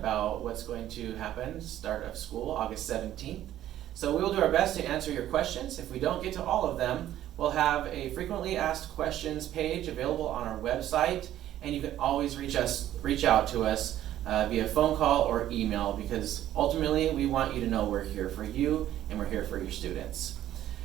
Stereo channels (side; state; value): left; quieter; 12.6 dB